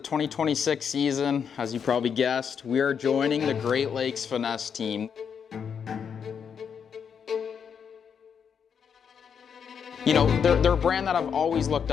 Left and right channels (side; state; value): right; quieter; 7.1 dB